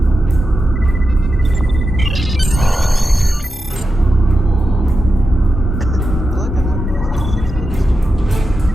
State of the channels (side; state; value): both; normal; correlation 0.89